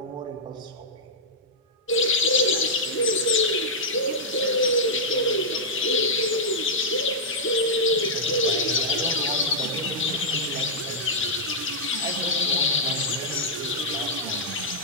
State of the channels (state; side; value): normal; both; correlation -0.08